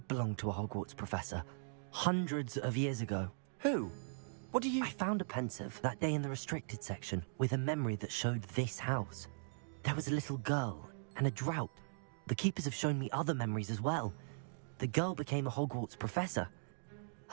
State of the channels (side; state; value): left; silent; digital silence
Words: belong to a Hogwarts professor, hundreds of years ago. Who? What do you... I found a pensive that day in the restricted section with a memory that showed this house. There was a little girl and a drought. The keepers have shown me other memories as well. The girl became a Hogwarts professor.